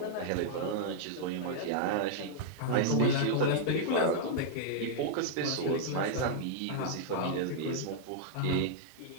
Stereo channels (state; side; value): different; both; correlation -0.01